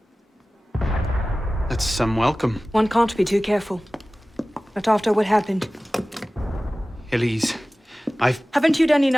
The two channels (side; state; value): both; normal; correlation 0.97